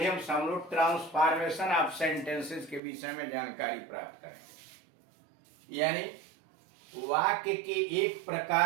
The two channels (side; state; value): left; drops out; at 2.8 s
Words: से हम लोग ट्रांसफॉर्मेशन ऑफ सेंटेंसेस के विषय में जानकारी प्राप्त करेंगे, यानी वाक्य के एक